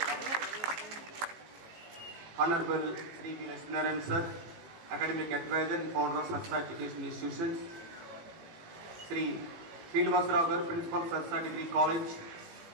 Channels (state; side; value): late; left; 18 ms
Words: Honorable Sri V. Lakshminarayan Sir, Academic Advisor and Founder of Sastha Education Institutions, Sri Srinivasarao Garu, Principal Sastha Degree College,